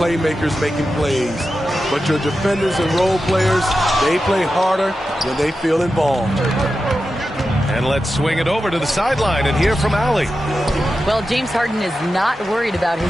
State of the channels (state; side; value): normal; both; correlation 0.91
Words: making plays, but your defenders and role players, they play harder when they feel involved. And let's swing it over to the sideline and hear from Allie. Well, James Harden is not worried about